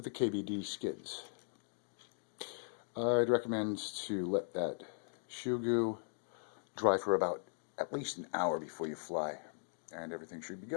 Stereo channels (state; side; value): silent; right; digital silence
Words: the KBDD skids. I'd recommend to let that shoe glue dry for about at least an hour before you fly, and everything should be